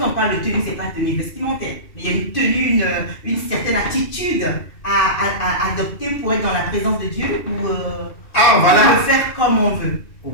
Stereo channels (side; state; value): right; late; 2.5 ms